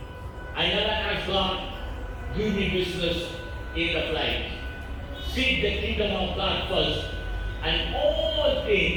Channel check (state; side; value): identical; both; correlation 1.00